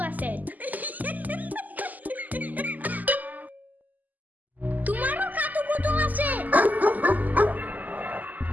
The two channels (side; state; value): left; late; 0.081 ms